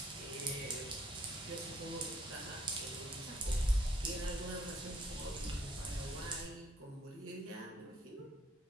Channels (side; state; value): both; normal; correlation 0.66